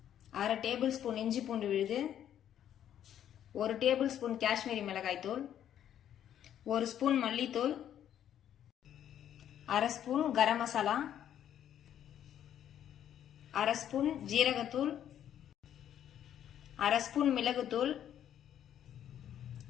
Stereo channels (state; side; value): quieter; right; 10.4 dB